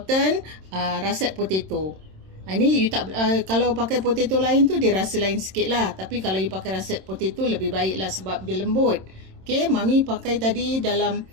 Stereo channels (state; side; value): late; left; 26 ms